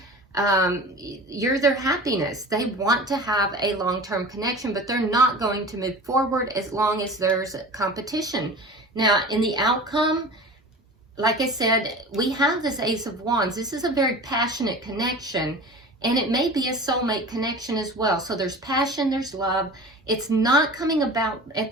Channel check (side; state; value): both; normal; correlation 0.37